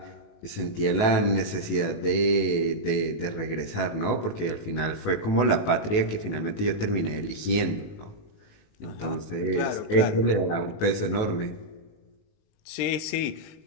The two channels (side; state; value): right; late; 19 ms